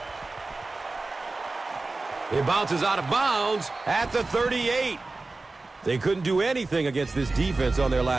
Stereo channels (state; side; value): quieter; left; 3.4 dB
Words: It bounces out of bounds at the 38. They couldn't do anything against this defense on their